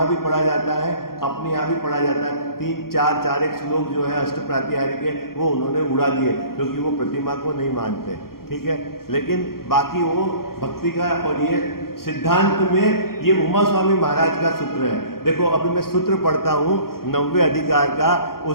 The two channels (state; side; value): late; right; 0.93 ms